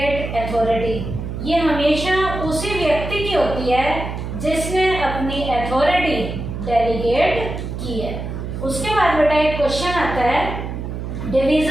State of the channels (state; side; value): noise; right; hum, 6 dB below the sound